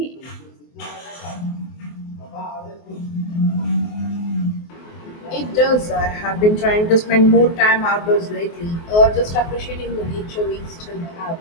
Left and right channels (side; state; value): right; late; 24 ms